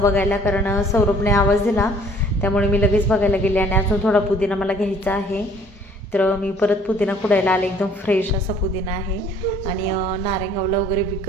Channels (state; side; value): normal; both; correlation 0.56